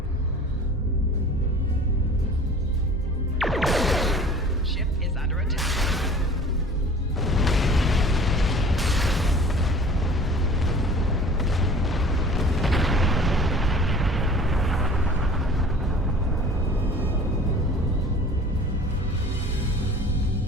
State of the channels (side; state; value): both; normal; correlation 0.45